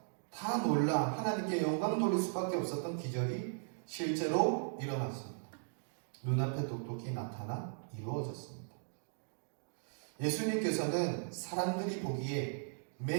다 놀라 하나님께 영광 돌릴 수밖에 없었던 기적이 실제로 일어났습니다. 눈앞에 똑똑히 나타나 이루어졌습니다. 예수님께서는 사람들이 보기에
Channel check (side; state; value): left; silent; digital silence